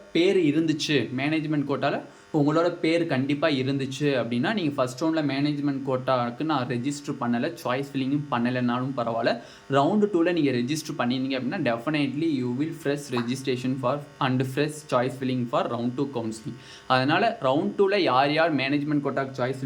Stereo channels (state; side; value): identical; both; correlation 1.00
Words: பேர் இருந்துச்சு, மேனேஜ்மெண்ட் கோட்டாவில் உங்களோட பேர் கண்டிப்பாக இருந்துச்சு அப்படின்னா நீங்கள் ஃபஸ்ட் ரவுண்டில் மேனேஜ்மெண்ட் கோட்டாவுக்கு நான் ரெஜிஸ்டர் பண்ணலை, சாய்ஸ் ஃபில்லிங்கும் பண்ணலைனாலும் பரவாயில்ல, ரவுண்டு 2ல் நீங்கள் ரெஜிஸ்டர் பண்ணியிருந்தீங்க அப்படின்னா definitely you will fresh registration for and fresh choice filling for round 2 counselling. அதனால் ரவுண்ட் 2ல் யார் மேனேஜ்மெண்ட் கோட்டாக்கு சாய்ஸ்